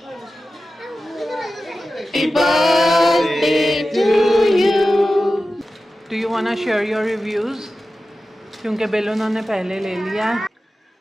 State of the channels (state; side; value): normal; both; correlation 0.94